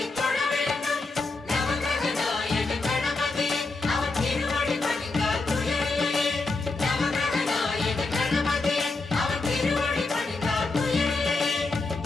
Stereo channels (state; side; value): quieter; right; 3.5 dB